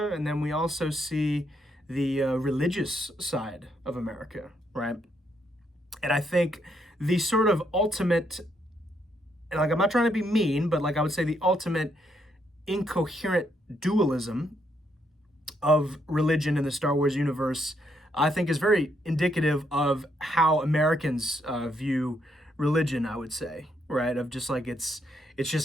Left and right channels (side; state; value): both; normal; correlation 0.75